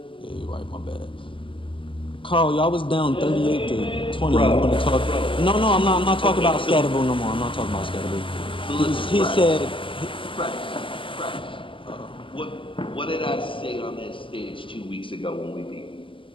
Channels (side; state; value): right; late; 0.25 ms